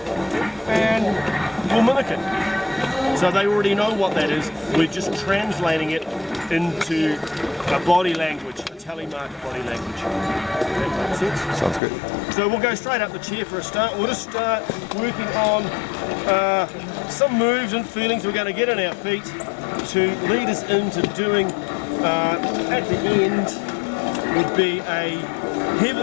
and we'll mimic it. So they already know what that is. We're just translating it into a body language, a telemark body language. That makes sense? Sounds good. So we'll go straight up the chair for a start. We'll just start working on some moves and feelings we're going to get in our feet to lead us into doing, at the end, would be a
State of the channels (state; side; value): drops out; right; at 11.8 s